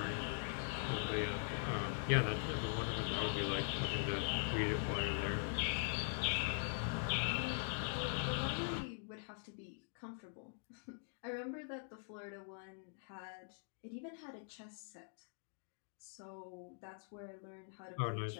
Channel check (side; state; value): right; silent; digital silence